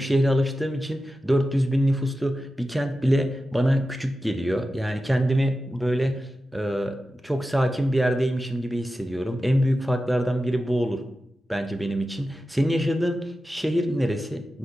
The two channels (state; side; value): normal; both; correlation 0.92